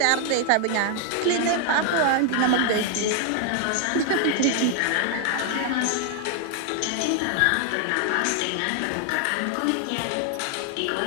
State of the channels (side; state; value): both; different; correlation 0.00